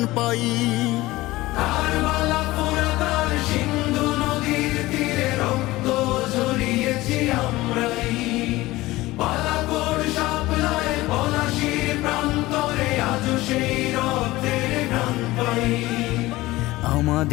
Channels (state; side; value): quieter; right; 18.6 dB